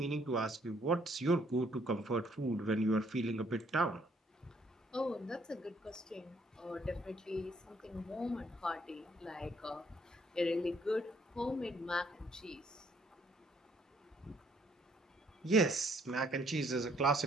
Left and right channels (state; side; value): normal; both; correlation 0.66